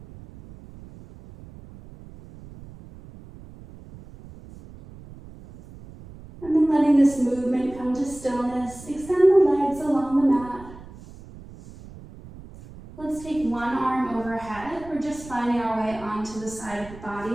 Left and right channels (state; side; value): noise; right; rumble, 18 dB below the sound